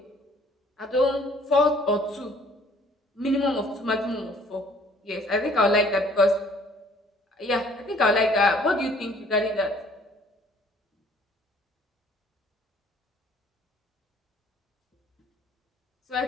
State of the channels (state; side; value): normal; both; correlation 0.58